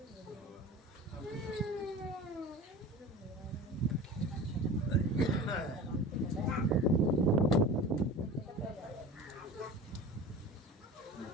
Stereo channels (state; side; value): normal; both; correlation 0.35